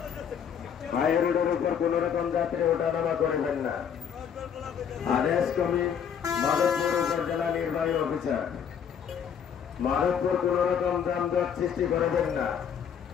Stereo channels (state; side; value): quieter; right; 7.9 dB